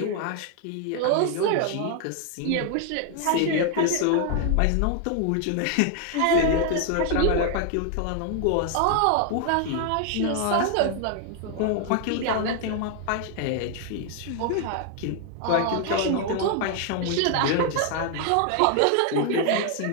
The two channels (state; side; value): different; both; correlation 0.00